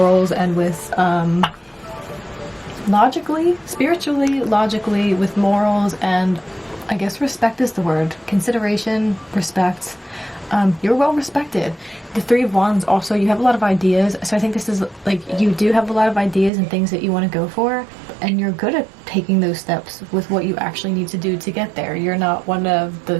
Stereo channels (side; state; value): left; drops out; at 16.5 s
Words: and with logically, spiritually, logically, with morals, and I guess respect is the word. Consideration, respect. You're well respected. The Three of Wands also, you have a lot of ideas. So I think this is like, you do have a lot of ideas and things that you want to go for. And you're good at taking those steps with what you actually need to do to get there. You're not one of